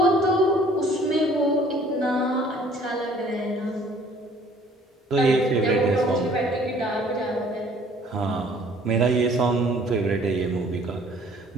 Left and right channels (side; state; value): both; normal; correlation 0.56